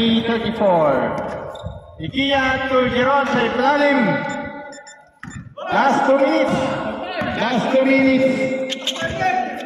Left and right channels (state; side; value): identical; both; correlation 1.00